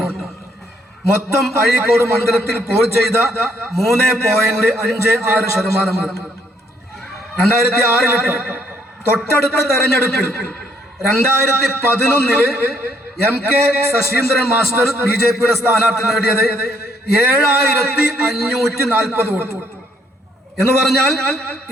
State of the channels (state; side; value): normal; both; correlation 0.69